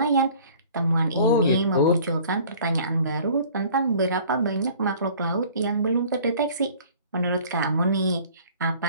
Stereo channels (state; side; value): inverted; both; correlation -0.50